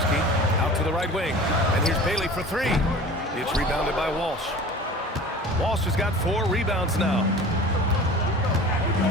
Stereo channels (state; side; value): normal; both; correlation 0.41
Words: Out to the right wing. And here's Bailey for 3. It's rebounded by Walsh. Walsh has got 4 rebounds now.